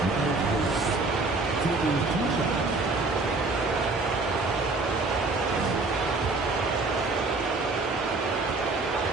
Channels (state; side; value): quieter; left; 3.5 dB